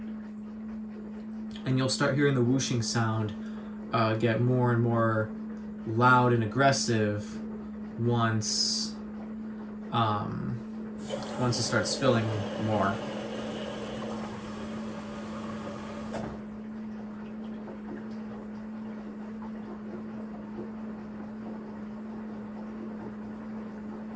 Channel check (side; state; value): both; identical; correlation 1.00